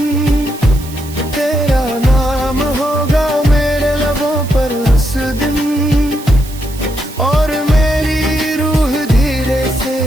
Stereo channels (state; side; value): noise; right; hiss, 17 dB below the sound